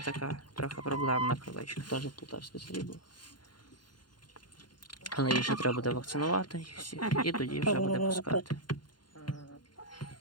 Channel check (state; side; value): late; right; 0.71 ms